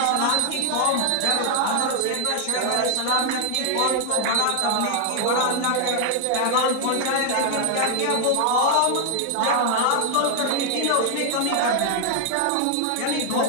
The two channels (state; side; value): different; both; correlation 0.00